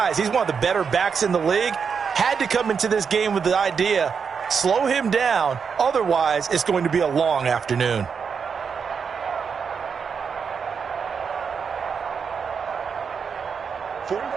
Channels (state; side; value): quieter; left; 6.2 dB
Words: He's one of the better backs in the league. Had to come into this game with the idea, slow him down, otherwise it's going to be a long afternoon.